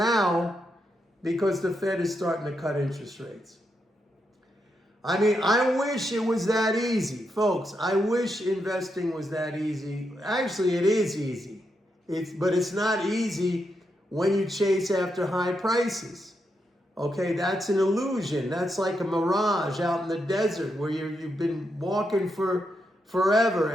because the Fed is starting to cut interest rates. I mean, I wish it was that easy, folks. I wish investing was that easy. Actually, it is easy. But it's not easy when you chase after high prices. Okay, that's an illusion. That's like a mirage out in the desert where you've been walking for forever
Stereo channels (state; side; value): normal; both; correlation 0.82